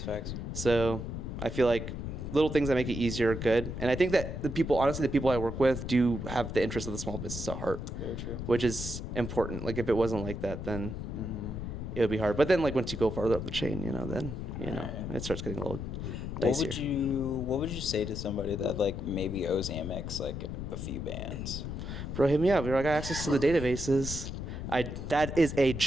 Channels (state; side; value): noise; left; rumble, 6 dB below the sound